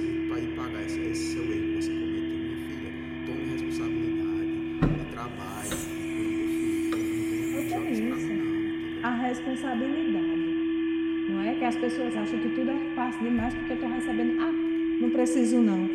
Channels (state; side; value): identical; both; correlation 1.00